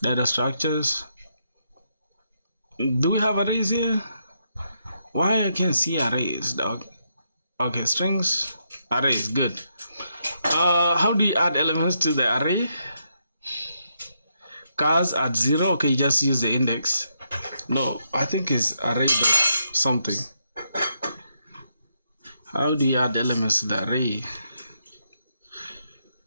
Data structures. Do we have arrays here? Why I can't see arrays, dog? Okay, strings, arrays, good. How do you add elements to the array? Cars at 0, okay, you just use the index. No, I think it's array something. How do you add elements to the array?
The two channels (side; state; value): both; inverted; correlation -0.79